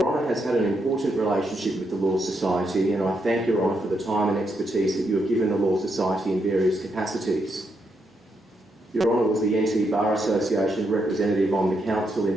Honour has had an important relationship with the Law Society, and I thank Your Honour for the time and expertise that you have given the Law Society in various capacities. Your Honour was the NT Bar Association representative on the Council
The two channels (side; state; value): both; normal; correlation 0.80